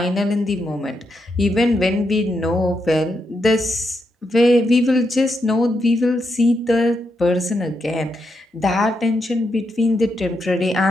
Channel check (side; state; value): both; normal; correlation 0.82